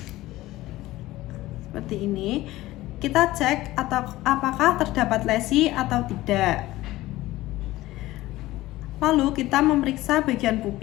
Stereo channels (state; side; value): quieter; right; 17.2 dB